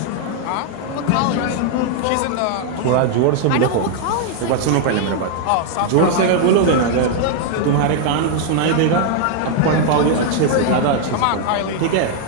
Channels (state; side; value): different; both; correlation 0.00